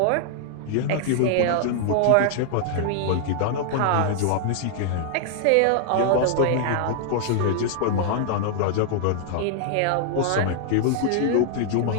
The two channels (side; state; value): both; different; correlation -0.01